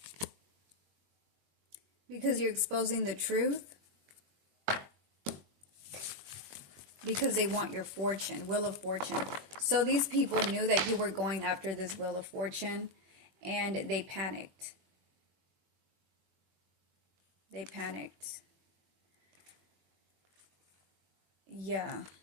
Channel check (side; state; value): left; late; 21 ms